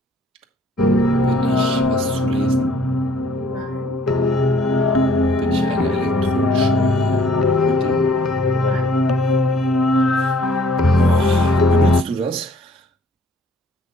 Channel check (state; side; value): normal; both; correlation 0.59